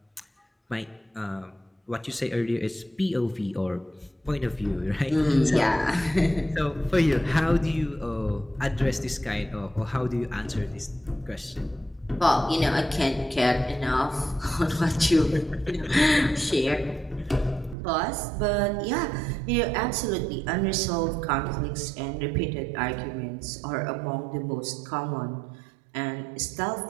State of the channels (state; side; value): drops out; left; at 17.8 s